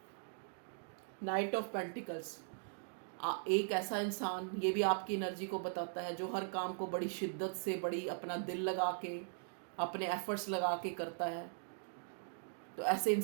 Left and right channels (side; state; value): left; silent; digital silence